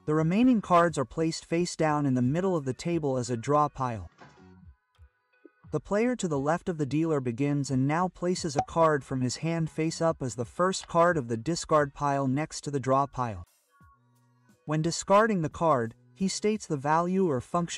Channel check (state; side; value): identical; both; correlation 1.00